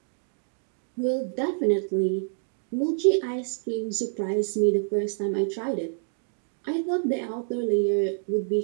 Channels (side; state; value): left; silent; digital silence